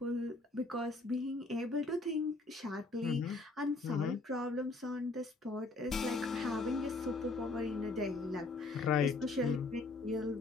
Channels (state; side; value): quieter; right; 3.3 dB